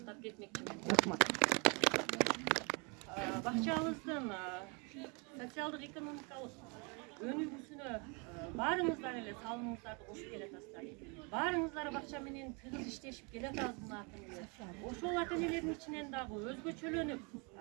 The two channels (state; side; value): quieter; left; 32.3 dB